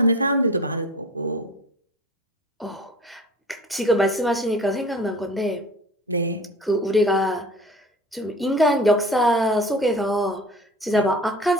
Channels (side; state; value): both; normal; correlation 0.41